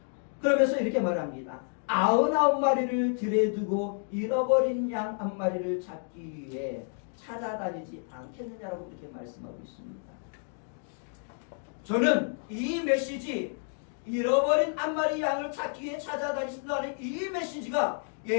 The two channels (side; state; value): right; silent; 58 dB below the other